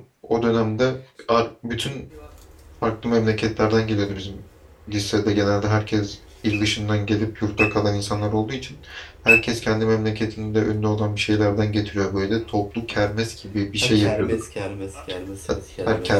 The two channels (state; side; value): identical; both; correlation 1.00